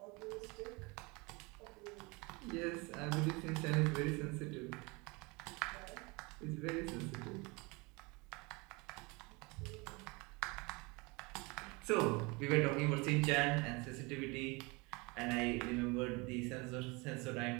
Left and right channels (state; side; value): quieter; left; 27.0 dB